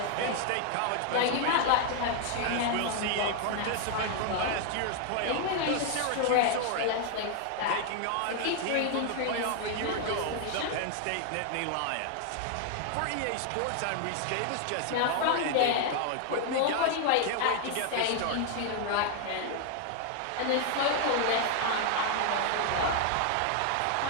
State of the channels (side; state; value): both; different; correlation 0.00